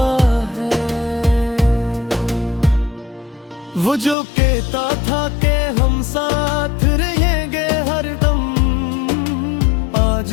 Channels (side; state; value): right; drops out; at 4.2 s